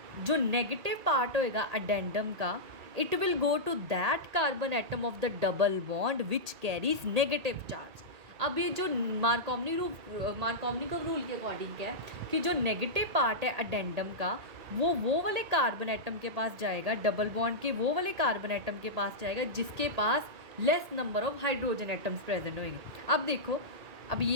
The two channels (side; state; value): left; late; 1.8 ms